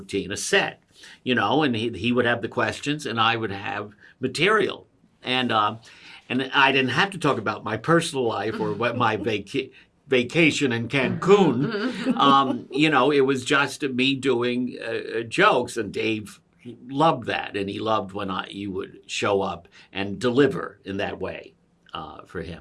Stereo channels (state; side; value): identical; both; correlation 1.00